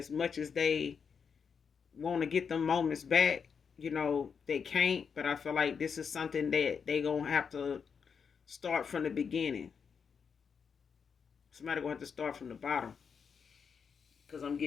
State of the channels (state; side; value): quieter; right; 6.3 dB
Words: much as they want to get them moments back, they can't. But I feel like this is something that they gonna have to start from the beginning. Somebody gonna have to start from the bottom. Cause I'm